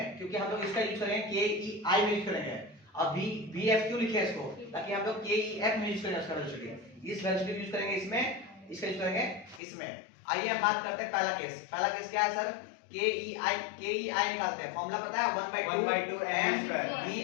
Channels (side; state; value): right; drops out; at 9.6 s